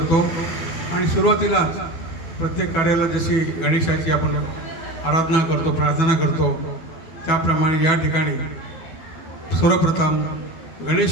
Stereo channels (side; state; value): right; late; 12 ms